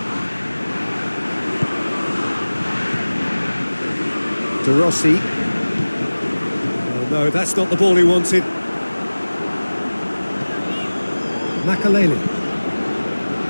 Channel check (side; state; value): both; inverted; correlation -1.00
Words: De Rossi. Oh no, that's not the ball he wanted. Makaleli.